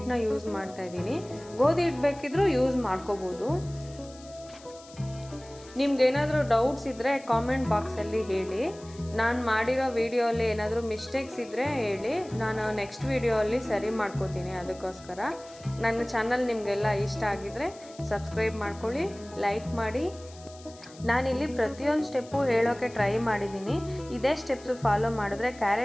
ಯೂಸ್ ಮಾಡ್ತಾ ಇದ್ದೀನಿ. ಗೋಧಿ ಹಿಟ್ಟು ಬೇಕಿದ್ರೂ ಯೂಸ್ ಮಾಡ್ಕೋಬೋದು. ನಿಮ್ಗೇನಾದರೂ ಡೌಟ್ಸ್ ಇದ್ದರೆ ಕಾಮೆಂಟ್ ಬಾಕ್ಸಲ್ಲಿ ಹೇಳಿ. ನಾನು ಮಾಡಿರೋ ವಿಡಿಯೋಲ್ಲಿ ಏನಾದರೂ ಮಿಸ್ಟೇಕ್ಸ್ ಇದ್ದರೆ ಹೇಳಿ, ನಾನು ನೆಕ್ಸ್ಟ್ ವಿಡಿಯೋಲ್ಲಿ ಸರಿ ಮಾಡ್ಕೋತೀನಿ. ಅದಕ್ಕೋಸ್ಕರ ನನ್ನ ಚಾನಲ್ ನಿಮಗೆಲ್ಲ ಇಷ್ಟ ಆಗಿದ್ದರೆ ಸಬ್ಸ್ಕ್ರೈಬ್ ಮಾಡ್ಕೊಳ್ಳಿ, ಲೈಕ್ ಮಾಡಿ. ನಾನಿಲ್ಲಿ ಪ್ರತಿಯೊಂದು ಸ್ಟೆಪ್ಪು ಹೇಳೋಕ್ಕೆ ಟ್ರೈ ಮಾಡಿದ್ದೀನಿ. ಇದೇ ಸ್ಟೆಪ್ಸು ಫಾಲೋ ಮಾಡಿದ್ರೆ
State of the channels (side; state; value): left; noise; hiss, 22 dB below the sound